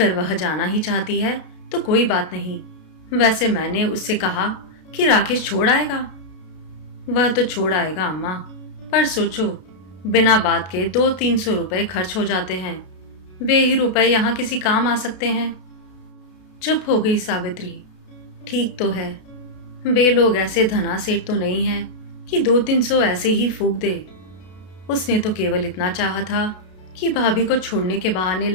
वह जाना ही चाहती है तो कोई बात नहीं। वैसे मैंने उससे कहा कि राकेश छोड़ आएगा। वह तो छोड़ आएगा अम्मा, पर सोचो, बिना बात के 200-300 रुपए खर्च हो जाते हैं। वे ही रुपए यहाँ किसी काम आ सकते हैं। चुप हो गई सावित्री। ठीक तो है, वे लोग ऐसे धनासेठ तो नहीं हैं कि 200-300 ऐसे ही फूंक दे। उसने तो केवल इतना चाहा था कि भाभी को छोड़ने के बहाने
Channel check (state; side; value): late; right; 32 ms